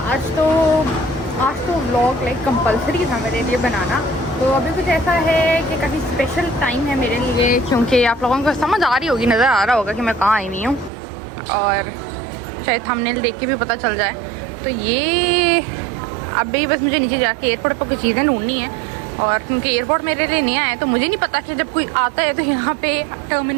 आज तो व्लॉग लाइक कंपलसरी था मेरे लिए बनाना। तो अभी कुछ ऐसा है कि काफ़ी स्पेशल टाइम है मेरे लिए, क्योंकि आप लोगों को समझ आ रही होगी, नज़र आ रहा होगा कि मैं कहाँ आई हुई हूँ, और शायद थंबनेल देख के भी पता चल जाए। तो ये अभी बस मुझे नीचे जाके एयरपोर्ट पर कुछ चीज़ें ढूंढनी है, और क्योंकि एयरपोर्ट मेरे लिए नया है तो मुझे नहीं पता कि जब कोई आता है तो यहाँ पे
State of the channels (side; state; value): left; drops out; at 10.9 s